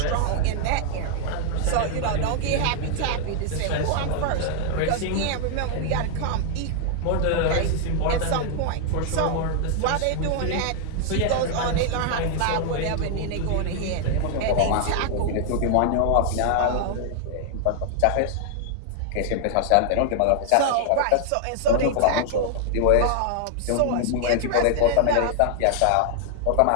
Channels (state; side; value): different; both; correlation 0.00